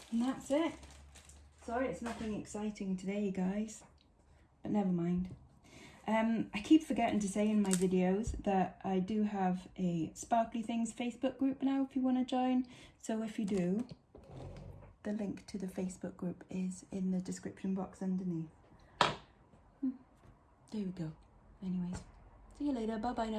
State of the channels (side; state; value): both; identical; correlation 1.00